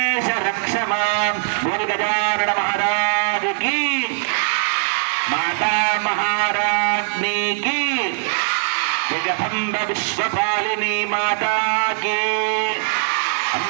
రక్ష మాం. బోల్ గజానన మహారాజ్ की, माता महाराज्ञी की, जगदम्ब विश्वपालिनी माता की,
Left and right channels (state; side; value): silent; left; 65 dB below the other